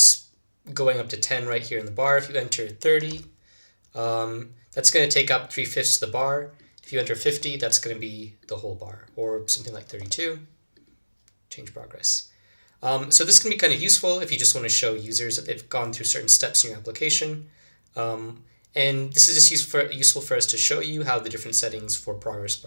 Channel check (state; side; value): inverted; both; correlation -0.99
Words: going up to 10 right here in the bar. If you enter 30, that's going to take up 3/5 of the bar. If you enter 50, that's going to be the whole bar, or something like 32. Change progress. So this can be kind of useful if you just want to show users that they've gone through certain steps in your application. And this is just useful for us to show you how the different settings for progress